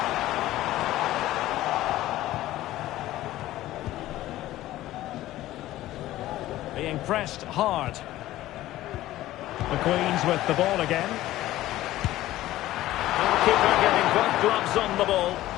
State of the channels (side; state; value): right; quieter; 15.3 dB